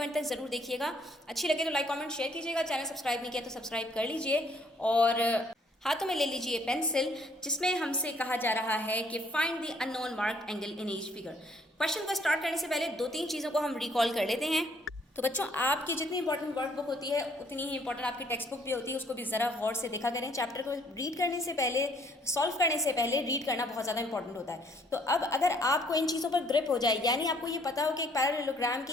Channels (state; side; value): normal; both; correlation 0.64